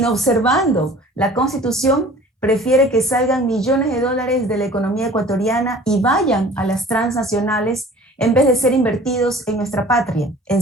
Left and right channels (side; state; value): both; normal; correlation 0.46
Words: la Constitución, prefiere que salgan millones de dólares de la economía ecuatoriana y vayan a las transnacionales en vez de ser invertidos en nuestra patria, en